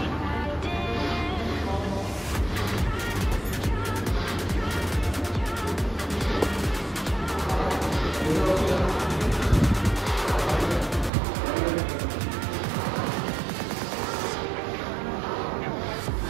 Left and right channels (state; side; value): drops out; left; at 11.1 s